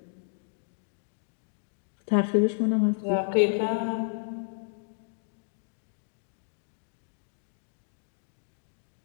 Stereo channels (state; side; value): silent; right; digital silence